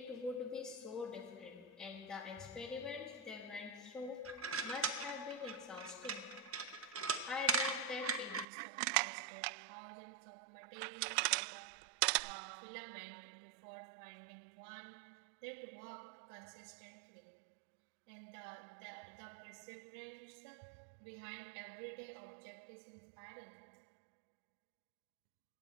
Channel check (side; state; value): left; drops out; at 8.5 s